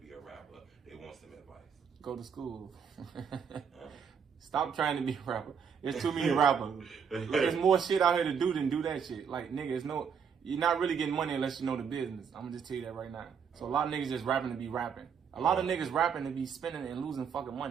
a rapper. They want some advice. Go to school. Stop trying to be a rapper. There's too many rappers. There's more shit out here to do than do that shit. Like, nigga, you're not really getting money unless you know the business. I'm gonna just tell you that right now. So a lot of niggas just rapping to be rapping. A lot of niggas rapping to be spending and losing fucking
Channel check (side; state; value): left; quieter; 6.9 dB